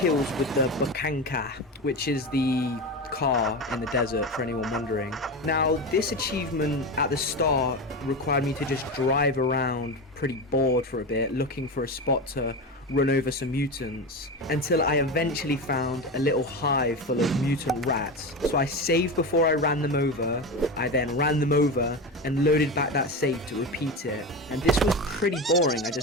with the Bukanka, which is the car in the desert, for anyone wondering. Now, this achievement at the start required me to just drive around pretty bored for a bit, looking for a spot to run over some mutants, until I eventually found a little hive full of mutant rats. So I saved before I ran them over, I then ran them over and loaded back that save to repeat it. And this was pretty boring, I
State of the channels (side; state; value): both; normal; correlation 0.22